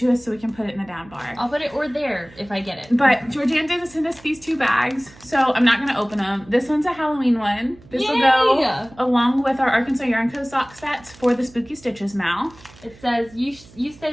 us so we can put it in the down bar. I'll put it or there if I get it. But Georgiana did send us these 2 bags, so I'm not going to open them. This one's a Halloween one. This will go along with our Arkansas Yarn Co. sock sets for the Spooky Stitches, Mal. It says, you say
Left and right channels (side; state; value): right; noise; hum, 23 dB below the sound